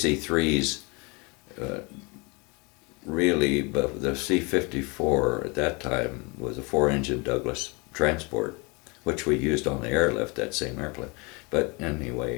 really, but the C-54 at that time was a 4-engine Douglas transport, which we used on the airlift, that same airplane. But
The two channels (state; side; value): quieter; right; 29.0 dB